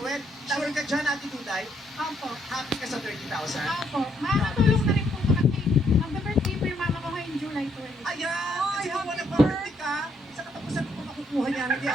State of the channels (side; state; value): both; normal; correlation 0.72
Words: Sure ka dyan, Ate Duday? Opo. Happy ka sa 30,000? Opo. Makakatulong na rin po ko kasi mag-birthday po yung mama ko ngayong July 20. Ayan! Kasi kung wala birthday ka, sa katapusan mo makukuha niya. Hindi